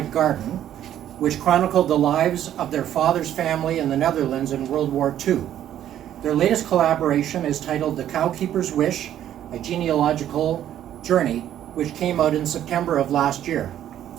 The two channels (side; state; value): left; quieter; 11.2 dB